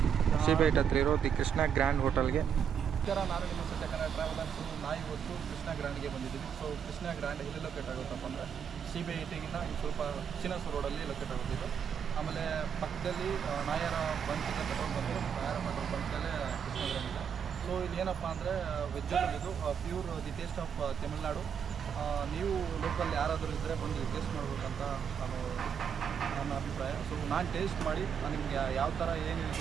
ಸಿಬಿಐಟ್ ಹತ್ರ ಇರೋ ದಿ ಕೃಷ್ಣ ಗ್ರ್ಯಾಂಡ್ ಹೋಟೆಲ್ಗೆ. ನಾನು ನಿಮ್ಮ ಸತ್ಯ ಕನ್ನಡ ಟ್ರಾವೆಲರ್ಸ್. ನಾವು ಇವತ್ತು ಕೃಷ್ಣ ಗ್ರ್ಯಾಂಡ್ಗೆ ಬಂದಿದ್ದೀವಿ. ಸೊ ಕೃಷ್ಣ ಗ್ರ್ಯಾಂಡ್ ಎಲ್ಲಿ ಲೊಕೇಟ್ ಆಗುತ್ತಪ್ಪ ಅಂದರೆ ಸಿಬಿಐಟಿಗಿಂತ ಸ್ವಲ್ಪ ಚಿನ್ನಸೂರು ರೋಡಲ್ಲಿ ಲೊಕೇಟ್ ಆಗುತ್ತಿದ್ದು. ಆಮೇಲೆ ಪಕ್ಕದಲ್ಲಿ ನಾಯರ ಬಂಕ್ ಇದೆ, ಪೆಟ್ರೋಲ್ ಬಂಕ್. ನಾಯರ ಪೆಟ್ರೋಲ್ ಬಂಕಲ್ಲೇ ಕೃಷ್ಣ ಗ್ರ್ಯಾಂಡ್ ಇದೆ. ಸೊ ಇಲ್ಲಿ ಏನಪ್ಪ ಅಂದರೆ ವೆಜ್ಜಲ್ಲಿ ಇದು pure the taste of Tamil Nadu. ನೀವು ಲೋಕಲ್ ಯಾರಾದರೂ ಇದ್ದರೆ ಬಂದು ಟೇಸ್ಟ್ ಮಾಡ್ಬೇಕಂತ ನನ್ನ ಅಭಿಪ್ರಾಯ. ಸೊ ನಾನು ಟೇಸ್ಟ್ ಮಾಡಿ ನಿಮಗೆ ಯಾವ ಥರ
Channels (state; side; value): quieter; left; 7.6 dB